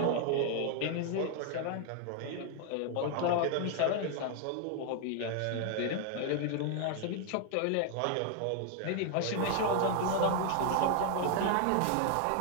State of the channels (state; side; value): different; both; correlation 0.00